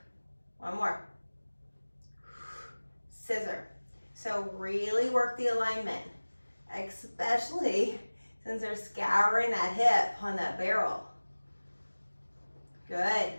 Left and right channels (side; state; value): both; inverted; correlation -1.00